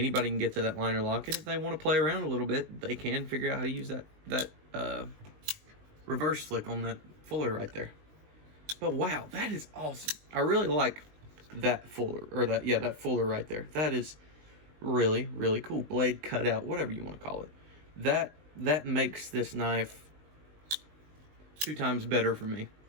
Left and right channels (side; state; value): left; late; 19 ms